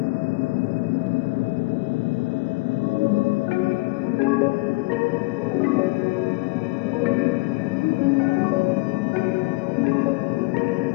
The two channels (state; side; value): quieter; right; 25.1 dB